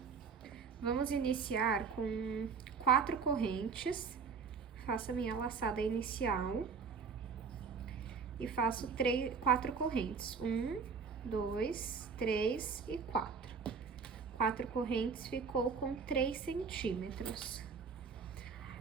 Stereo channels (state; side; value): quieter; left; 5.6 dB